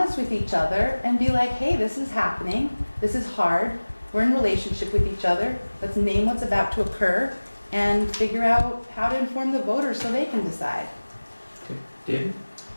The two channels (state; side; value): inverted; both; correlation -1.00